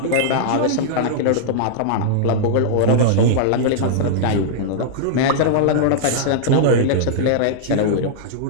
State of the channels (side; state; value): both; different; correlation -0.02